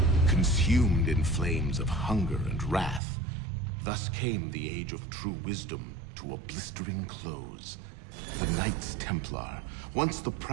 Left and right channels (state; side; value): drops out; left; at 3.0 s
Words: Consumed in flames of hunger and wrath, thus came the Age of True Wisdom to a blistering close. The Knights Templar, once the